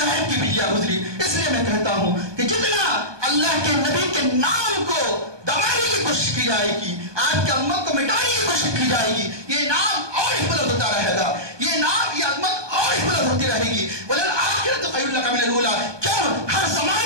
کی بجلیاں گزری. اس لیے میں کہتا ہوں کہ جتنا اللہ کے نبی کے نام کو دبانے کی کوشش کی جائے گی, آپ کی امت کو مٹانے کی کوشش کی جائے گی, یہ نام اور ہی بلند ہوتا رہے گا, یہ نام یہ عظمت اور ہی بلند ہوتی رہے گی. وَلَلْآخِرَةُ خَيْرٌ لَكَ مِنَ الْأُولَىٰ. کیوں ہر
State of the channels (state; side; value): late; left; 1.2 ms